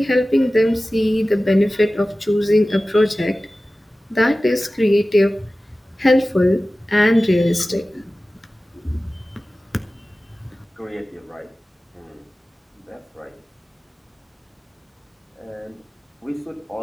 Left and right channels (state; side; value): normal; both; correlation 0.96